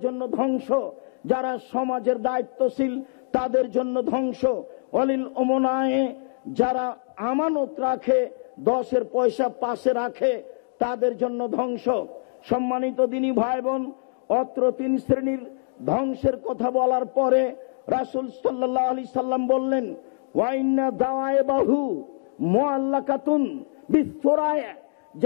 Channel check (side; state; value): right; silent; digital silence